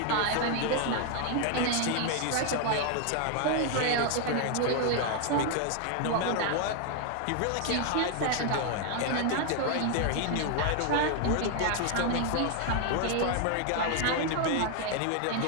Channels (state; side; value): different; both; correlation 0.00